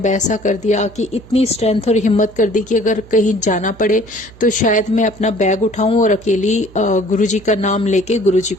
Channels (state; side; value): noise; right; hum, 22 dB below the sound